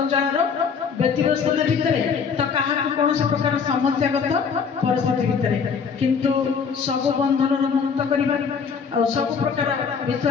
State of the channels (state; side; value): quieter; right; 6.1 dB